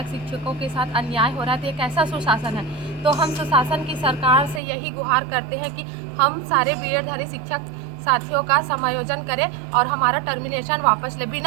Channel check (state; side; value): drops out; left; at 4.6 s